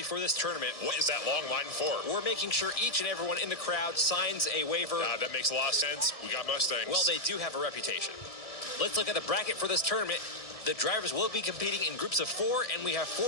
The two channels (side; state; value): right; late; 1.7 ms